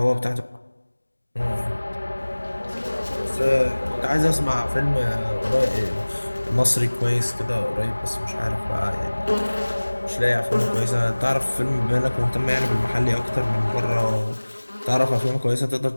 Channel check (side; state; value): both; inverted; correlation -1.00